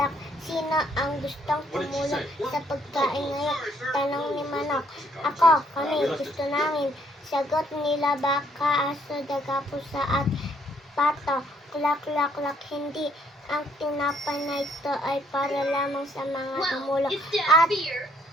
Sino ang gustong tumulong sa pagkain ngayon? Tanong ni Manok. Ako, kami, gusto namin. Sagot nila baka, aso, daga, pusa, at pato. Kulak, kulak, kulak. Hindi. Ang tinapay na ito ay para lamang sa mga tumulong at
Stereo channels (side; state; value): both; normal; correlation 0.68